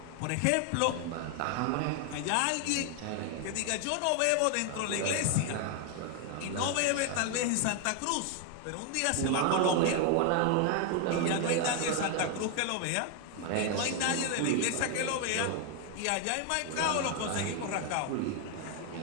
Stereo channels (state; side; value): different; both; correlation 0.00